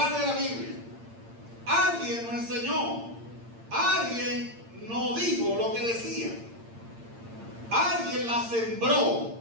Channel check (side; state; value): left; late; 8.8 ms